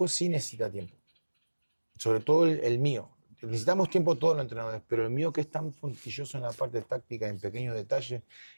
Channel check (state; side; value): inverted; both; correlation -1.00